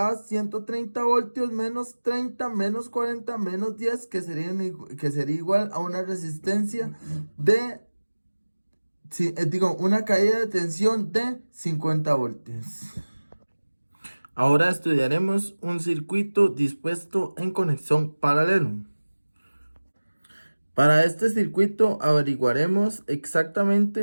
130 voltios menos 30 menos 40 menos 10, que sería igual a una resistencia de, una caída de tensión de 50 voltios. Ahora estudiaremos un circuito dispuesto en conexión paralelo. Para este circuito averiguaremos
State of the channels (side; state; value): both; inverted; correlation -1.00